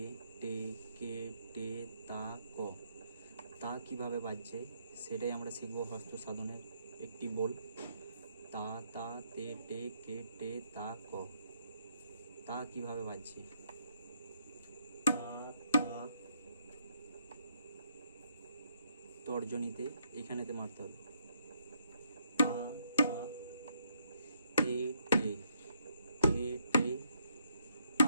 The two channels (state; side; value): inverted; both; correlation -0.73